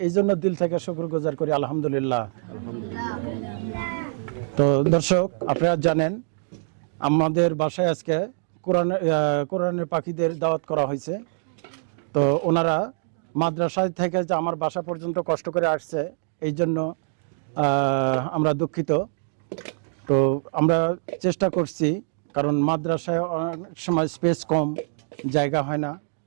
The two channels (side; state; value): left; silent; digital silence